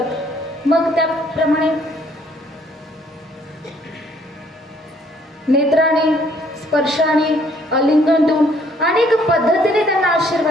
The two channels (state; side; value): normal; both; correlation 0.63